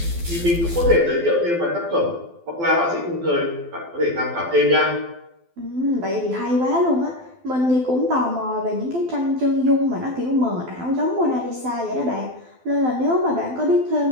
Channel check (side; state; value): left; late; 12 ms